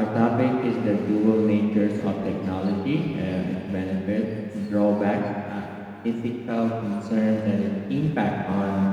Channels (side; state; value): both; identical; correlation 1.00